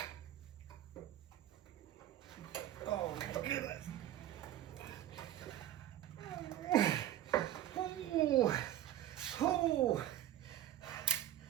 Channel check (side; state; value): left; quieter; 12.4 dB